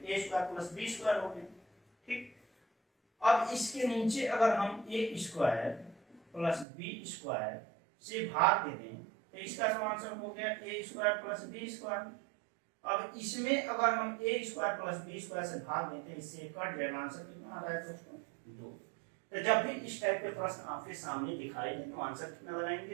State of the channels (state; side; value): drops out; left; at 6.7 s